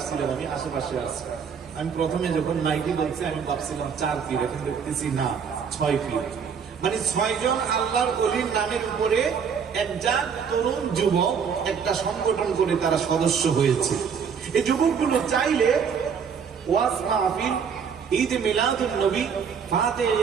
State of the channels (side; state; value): left; quieter; 6.7 dB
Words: আমি আশেপাশে আসছি। আমি প্রথমে যখন মাইকি বলছি আমি ভাবছিলাম 4 পীর, এখন দেখতেছি না 6 পীর। মানে 6 জন আল্লাহর ওলির নামের উপরে একটা তরুণ যুবক একটা সংগঠন করে তারা সদস্য হয়েছে। এই যুবকগুলো চাইলে ওয়াজ মাহফিল, ঈদ মিলাদুন নবী, ফাতে